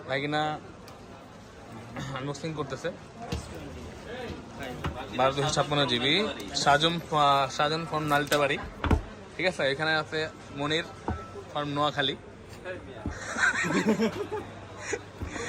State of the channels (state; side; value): identical; both; correlation 1.00